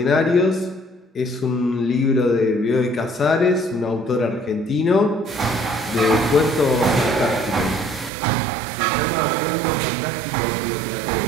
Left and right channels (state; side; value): drops out; left; at 8.1 s